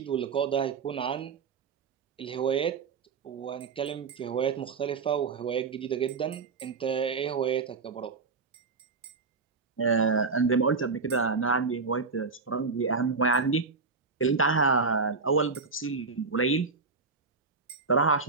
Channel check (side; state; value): left; quieter; 4.6 dB